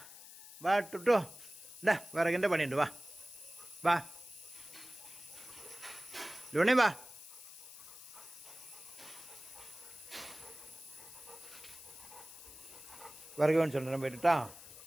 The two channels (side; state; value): left; noise; hiss, 15 dB below the sound